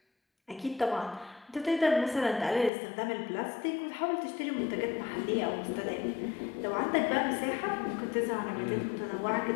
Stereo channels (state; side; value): drops out; right; at 2.7 s